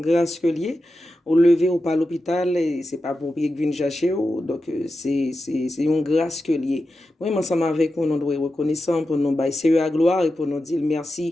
que lié, au lever ou pas à l'hôpital, et c'est pas pour qu'il vienne chercher, donc c'est une grâce que lié. Moi, ensemble avec nous, nous doit être reconnaissants pour nous baisser à gloire et pour nous dire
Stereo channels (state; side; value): normal; both; correlation 0.91